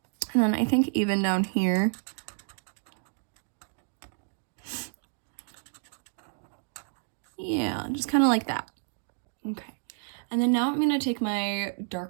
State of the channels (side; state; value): left; silent; digital silence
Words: And then I think even down here, yeah, just kind of like that. Okay, and then now I'm gonna take my